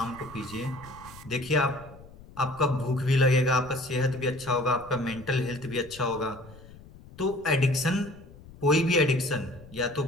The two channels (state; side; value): noise; left; rumble, 20 dB below the sound